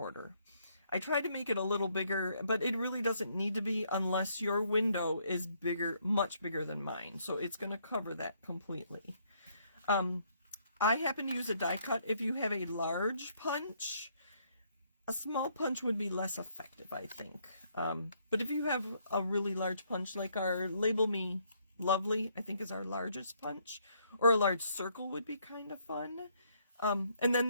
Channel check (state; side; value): inverted; both; correlation -0.69